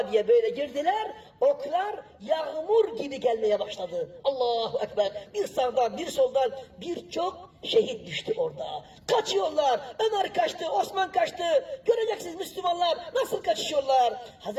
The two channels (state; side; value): identical; both; correlation 1.00